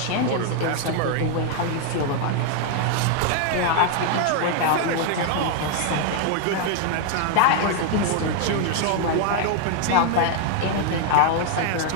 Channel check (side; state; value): both; different; correlation 0.00